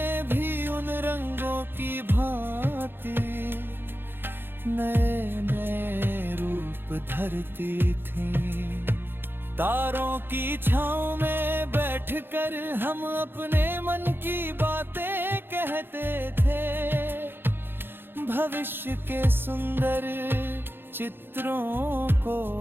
भी उन रंगों की भांति नए नए रूप धरती थीं। तारों की छांव में बैठकर हम अपने मन की बातें कहते थे, भविष्य के सुंदर चित्रों को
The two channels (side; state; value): left; late; 0.10 ms